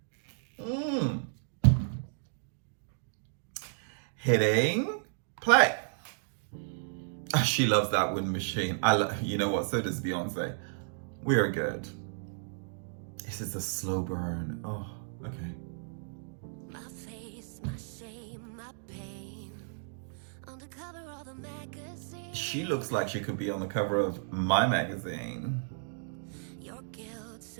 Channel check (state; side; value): silent; left; digital silence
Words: Hitting play. Oh, she loves that wind machine. You know what? So does Beyonce. We are good. This is a slow burn. Oh, okay. My face, my shame, my pain. On the cover of the magazine. She looks like she could be on the cover of my magazine. Your guilt